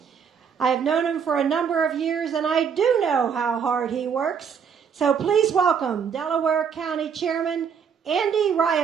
I have known him for a number of years, and I do know how hard he works. So please welcome Delaware County Chairman Andy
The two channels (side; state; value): left; quieter; 7.0 dB